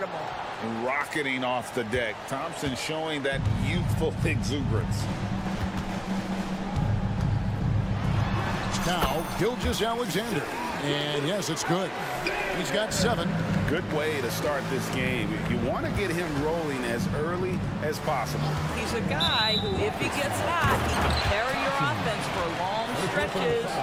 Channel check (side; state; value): both; identical; correlation 1.00